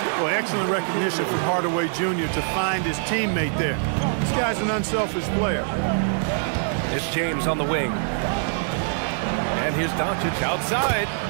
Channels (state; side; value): silent; left; digital silence